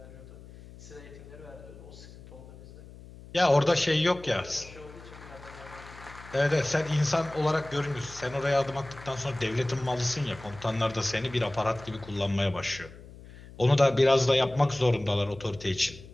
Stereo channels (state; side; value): noise; left; hum, 18 dB below the sound